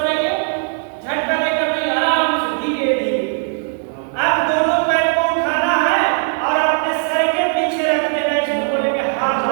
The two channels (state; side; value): silent; left; 57 dB below the other